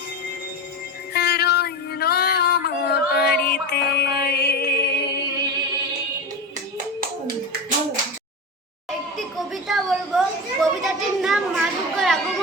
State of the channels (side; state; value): both; normal; correlation 0.24